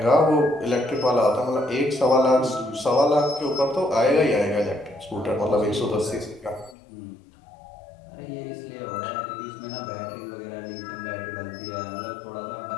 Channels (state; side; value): drops out; right; at 6.8 s